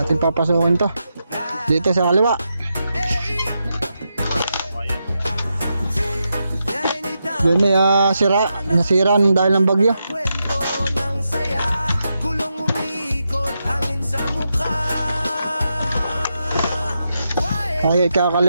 Ating papasukin to dito sa kaliwa. Yun may nasira dahil ng bagyo. Okay,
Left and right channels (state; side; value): inverted; both; correlation -0.85